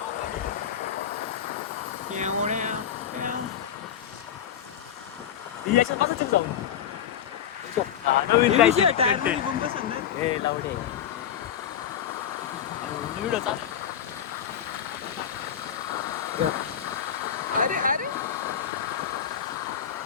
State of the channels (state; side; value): quieter; right; 9.1 dB